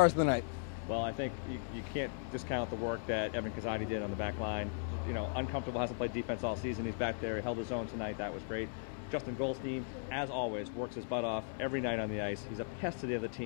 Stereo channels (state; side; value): silent; right; digital silence